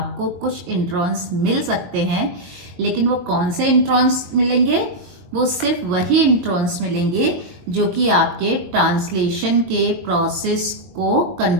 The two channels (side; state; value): left; late; 22 ms